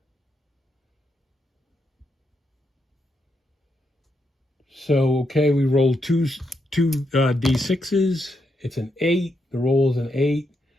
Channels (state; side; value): normal; both; correlation 0.81